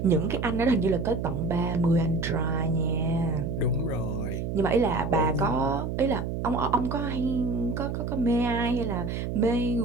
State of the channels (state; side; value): noise; right; hum, 3 dB below the sound